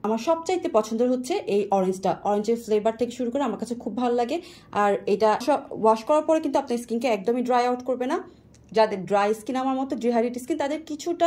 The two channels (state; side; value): identical; both; correlation 1.00